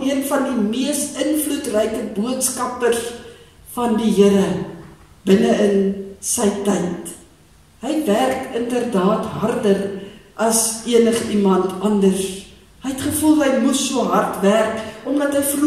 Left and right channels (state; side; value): identical; both; correlation 1.00